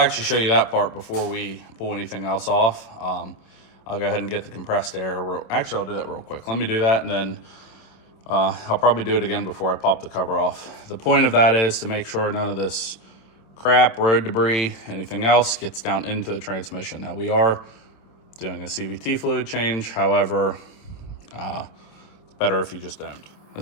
show you that part before we pull anything else off. I'll go ahead and get the compressed air. Actually, I'll do that real quick. Let me do that, and then I'll probably do it again before I pop the cover off. The point of that is to make sure none of this crap, road debris, anything else gets down into the transmission. Now, we are doing a CVT fluid change. However, it's better if you just don't.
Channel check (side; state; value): right; late; 27 ms